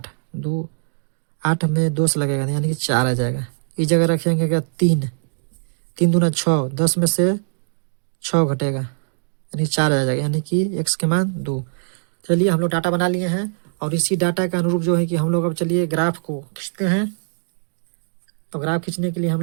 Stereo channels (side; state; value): left; silent; digital silence